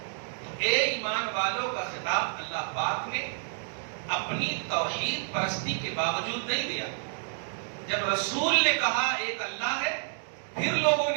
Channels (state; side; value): silent; left; digital silence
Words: تو اے ایمان والوں کا خطاب اللہ پاک نے اپنی توحید پرستی کے باوجود نہیں دیا. جب رسول نے کہا ایک اللہ ہے، پھر لوگوں